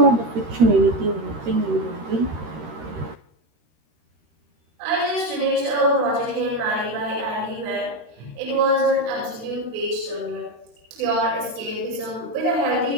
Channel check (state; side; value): late; left; 13 ms